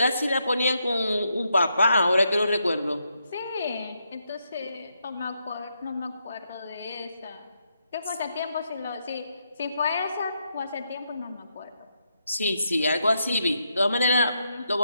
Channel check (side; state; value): both; inverted; correlation -0.81